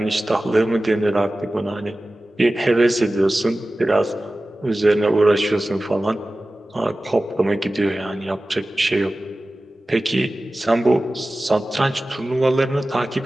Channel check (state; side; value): normal; both; correlation 0.96